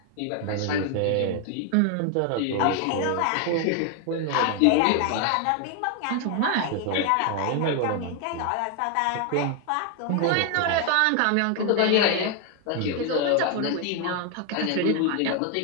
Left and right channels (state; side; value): different; both; correlation 0.01